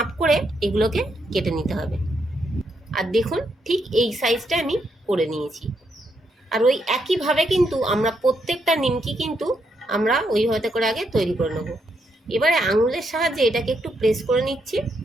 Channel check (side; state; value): both; normal; correlation 0.78